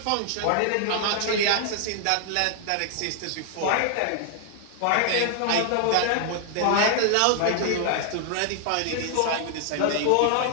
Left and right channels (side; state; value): both; different; correlation 0.00